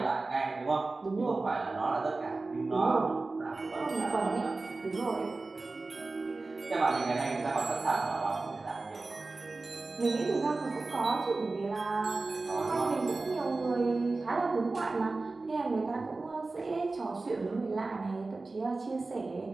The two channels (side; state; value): left; quieter; 3.5 dB